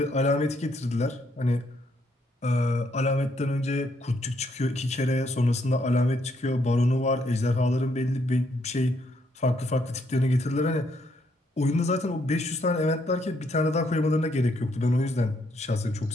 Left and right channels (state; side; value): normal; both; correlation 0.72